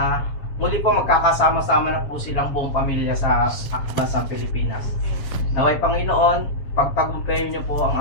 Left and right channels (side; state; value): right; late; 7.3 ms